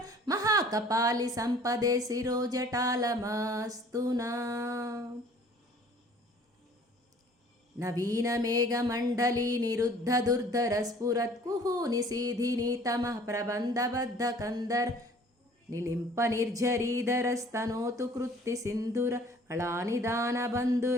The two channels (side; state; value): both; normal; correlation 0.52